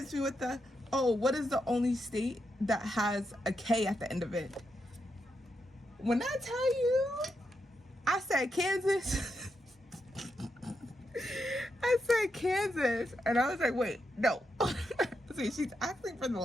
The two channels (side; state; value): both; normal; correlation 0.83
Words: me with the, oh, what is the only state that has a K at the end of it? When I tell you, I said Kansas. I said Kansas. And I was like, wait, no. See, she's asking for the